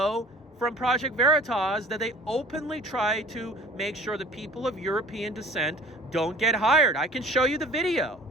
from Project Veritas that they openly try to make sure that people of European descent don't get hired. I can show you the video.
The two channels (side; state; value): both; normal; correlation 0.48